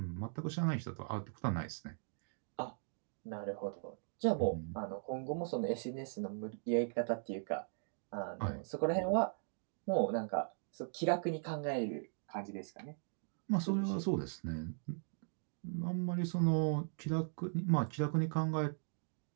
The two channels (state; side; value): silent; left; digital silence